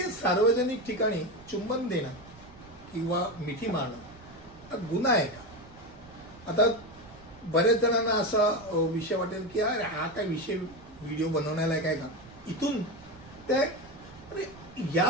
सार्वजनिक ठिकाणी चुंबन देणं किंवा मिठी मारणं हा गुन्हा आहे का? आता बरेच जणांना असा विषय वाटेल की अरे हा काय विषय व्हिडिओ बनवण्याला काय का, इथून त्या या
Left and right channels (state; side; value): noise; right; rumble, 22 dB below the sound